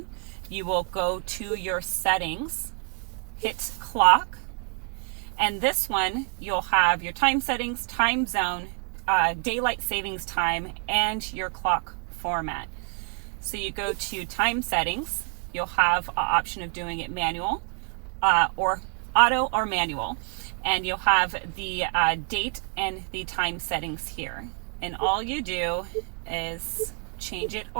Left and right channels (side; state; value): left; quieter; 39.8 dB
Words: You will go to your settings, hit clock, and this one you'll have your time settings, time zone, daylight savings time, and your clock format. So you go to time settings, you'll have an option of doing it manual or auto or manual, and you'll have the date and the time settings here. And all you do is change it